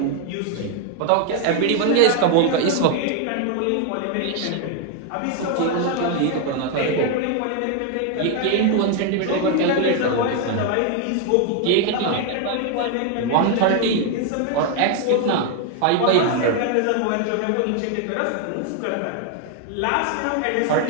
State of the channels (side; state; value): both; different; correlation 0.01